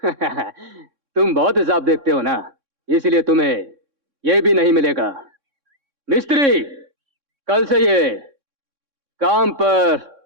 तुम बहुत हिसाब देखते हो ना, इसलिए तुम्हें ये भी नहीं मिलेगा। मिस्त्री, कल से ये काम पर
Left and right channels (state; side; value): late; left; 3.6 ms